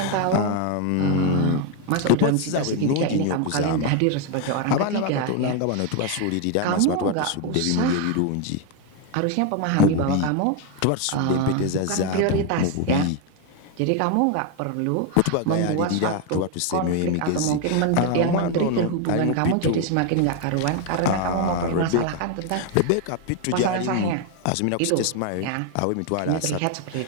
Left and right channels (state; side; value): different; both; correlation 0.01